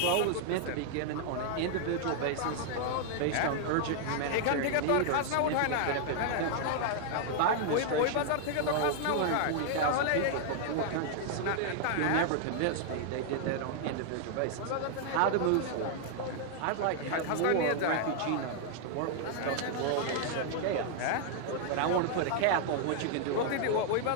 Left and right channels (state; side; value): different; both; correlation 0.00